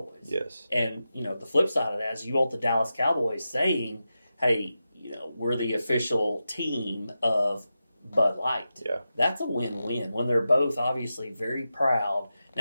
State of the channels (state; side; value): inverted; both; correlation -0.91